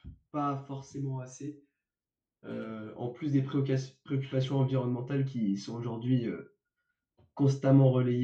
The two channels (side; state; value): both; identical; correlation 1.00